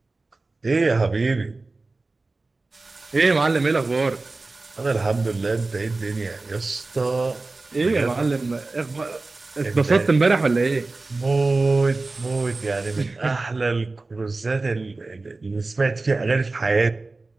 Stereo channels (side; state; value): left; quieter; 3.4 dB